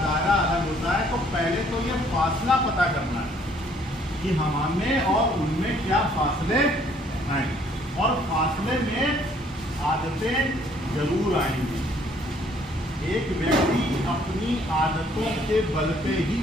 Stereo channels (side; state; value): both; normal; correlation 0.62